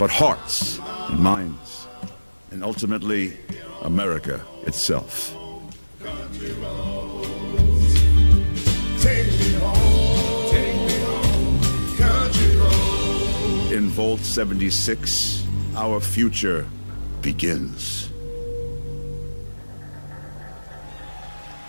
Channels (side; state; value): both; inverted; correlation -1.00